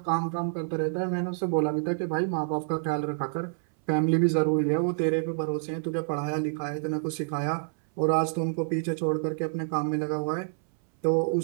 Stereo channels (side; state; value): left; silent; 60 dB below the other